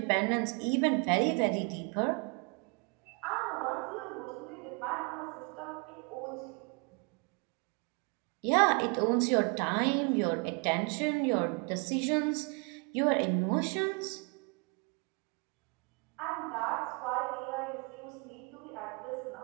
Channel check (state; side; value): quieter; left; 33.4 dB